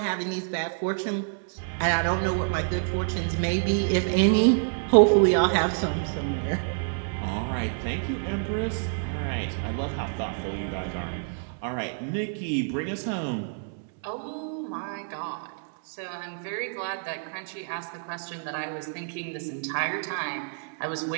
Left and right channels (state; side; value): silent; left; digital silence